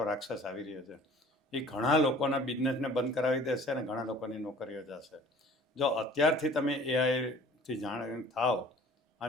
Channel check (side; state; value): both; normal; correlation 0.48